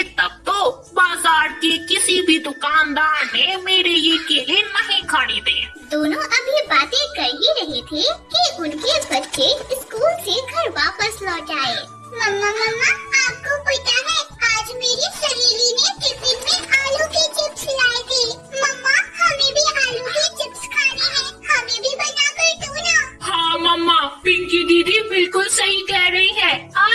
तब तो। बाजार के किसी भी दुकानदार ने मेरे ये केले नहीं खरीदे। दोनों अभी बातें कर ही रहे थे कि उनके बच्चे स्कूल से घर वापस लौट आए। मम्मा मम्मा, आपको पता है आज मेरी सहेली ने टिफिन में आलू के चिप्स लाए थे। मम्मा, हमें भी आलू के चिप्स खाने हैं, हमें भी बना कर दो ना। हाँ मम्मा, पिंकी दीदी बिल्कुल सही कह रही है।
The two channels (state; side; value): identical; both; correlation 1.00